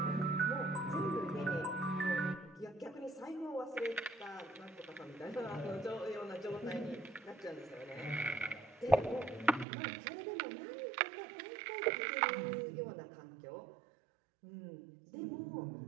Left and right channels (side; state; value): left; drops out; at 9.7 s